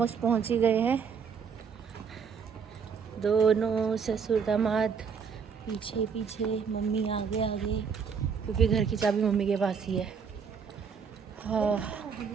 पहुंच ही गए हैं। दोनों ससुर दामाद पीछे पीछे, मम्मी आगे आगे, क्योंकि घर की चाबी मम्मी के पास ही है। हाँ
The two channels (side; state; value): left; quieter; 6.3 dB